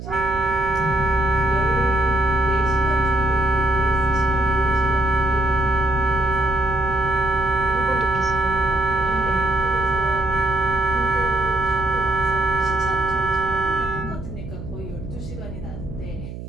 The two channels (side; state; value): right; noise; hum, 10 dB below the sound